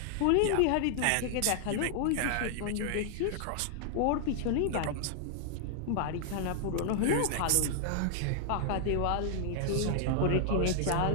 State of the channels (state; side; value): different; both; correlation 0.00